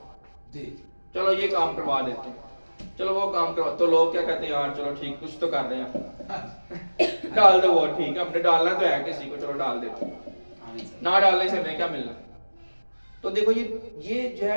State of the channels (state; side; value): inverted; both; correlation -1.00